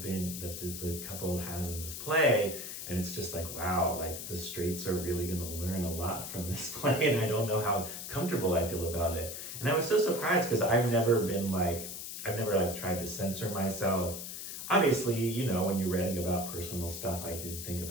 that the couple has in this play. And it's just like, wow, like the straights are really going to learn a lot from this play. And I don't know how comfortable I feel about it. And I was so surprised because I've never tried to censor myself. Obviously, when you're writing about personal stuff, I did think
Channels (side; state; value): left; noise; hiss, 8 dB below the sound